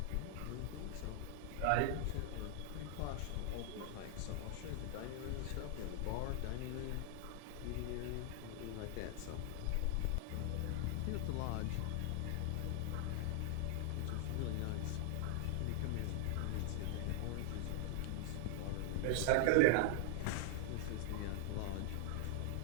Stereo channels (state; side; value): different; both; correlation 0.00